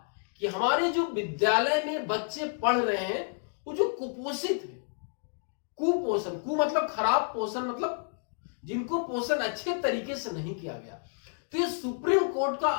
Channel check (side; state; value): right; silent; digital silence